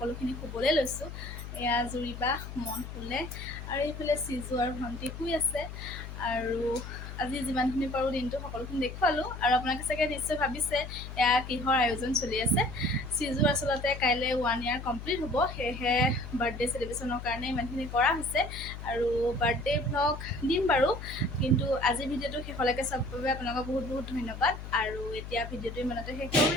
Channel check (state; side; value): noise; left; hum, 10 dB below the sound